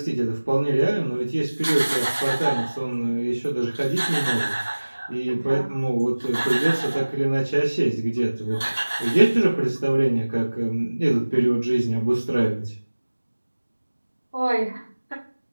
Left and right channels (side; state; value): both; inverted; correlation -1.00